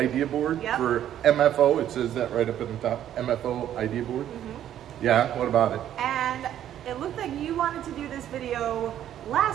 board for MFO. It says that right up at the top, MFO idea board. Yeah, what about it? And it looked like you wanted to do this video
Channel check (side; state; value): left; quieter; 11.1 dB